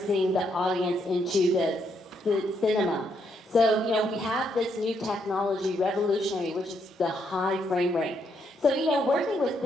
the audience into the cinema. So, we have this new technology, revolutionary, which is the high frame rate. So, working with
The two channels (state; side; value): normal; both; correlation 0.76